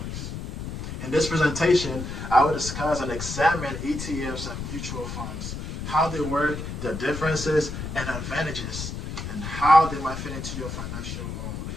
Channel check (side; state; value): left; noise; rumble, 6 dB below the sound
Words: In this presentation, I will discuss and examine ETFs and mutual funds, how they work, their differences and advantages, and how they might fit into your financial or